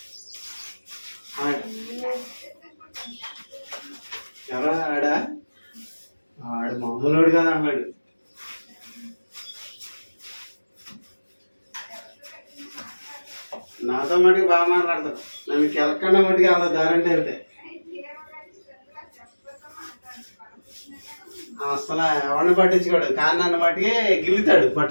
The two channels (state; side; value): inverted; both; correlation -1.00